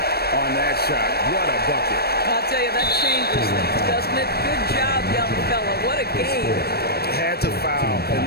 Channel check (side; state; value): right; late; 0.46 ms